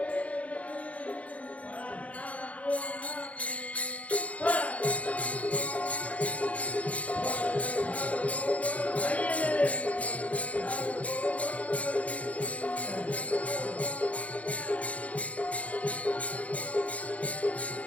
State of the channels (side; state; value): right; late; 0.066 ms